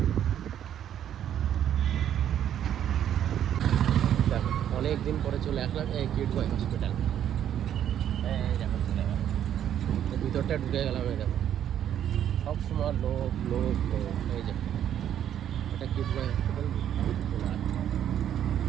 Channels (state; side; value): quieter; left; 10.2 dB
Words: দেখো অনেক দিন পরে চলে আসলাম এই কিডওয়াই হসপিটাল। এই দেখো চলে গেলাম, ভিতরটা ঢুকে গেলাম। এই দেখো সবসময় লোক লোক লোক। এই যে এটা কিডওয়াই হসপিটাল।